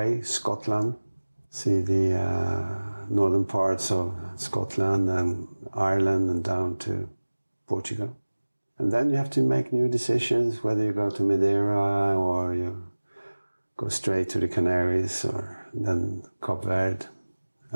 Scotland, see the northern parts of Scotland and Ireland and down to Portugal. And then you have to make new decisions, whether you go to Madeira or you go straight to the Canaries or then Cape Verde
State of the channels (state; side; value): inverted; both; correlation -1.00